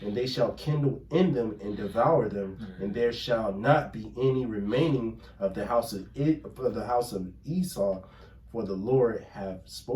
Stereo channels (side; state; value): both; identical; correlation 1.00